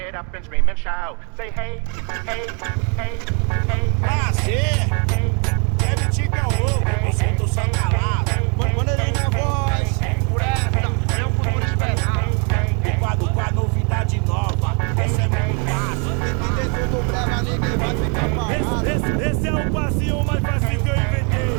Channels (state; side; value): quieter; left; 37.3 dB